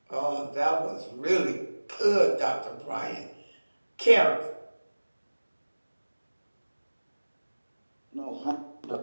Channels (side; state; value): both; inverted; correlation -1.00